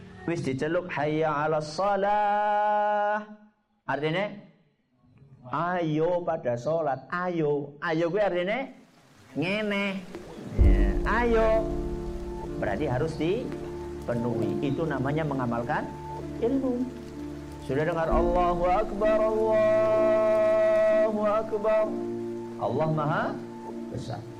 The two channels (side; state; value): both; identical; correlation 1.00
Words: wis diceluk hayya 'alas shalah. Artinya ayo pada sholat. Ayo gue artinya ngene ya, ayo berarti harus dipenuhi. Itu namanya mengamalkan ilmu. Sudah dengar Allahu Akbar, Allahu Akbar, Allah Maha Besar.